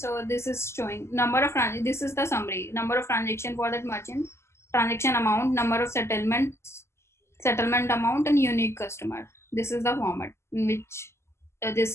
this is showing number of this is the summary. Number of transaction for that merchant, transaction amount, number of settlements, settlement amount, and unique customer. This is the format in which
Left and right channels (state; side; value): late; right; 0.13 ms